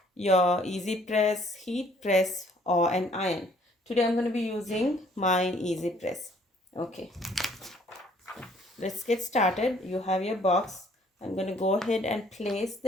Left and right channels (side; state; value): both; normal; correlation 0.61